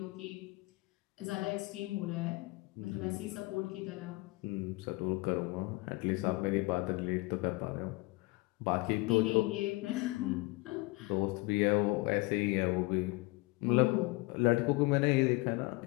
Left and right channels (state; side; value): quieter; right; 23.8 dB